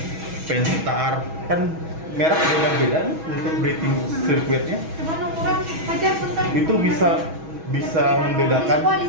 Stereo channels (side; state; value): left; late; 6.2 ms